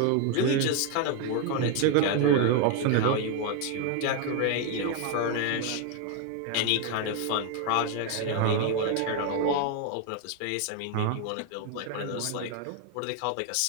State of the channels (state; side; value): different; both; correlation 0.01